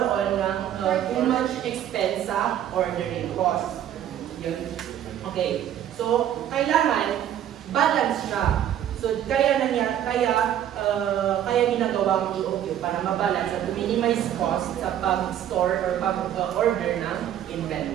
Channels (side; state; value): left; quieter; 10.7 dB